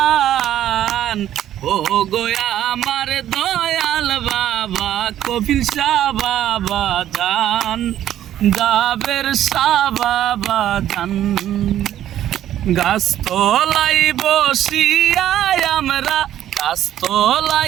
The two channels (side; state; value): left; quieter; 11.8 dB